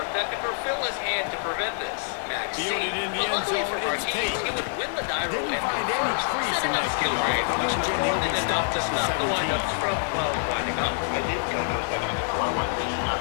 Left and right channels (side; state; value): right; silent; digital silence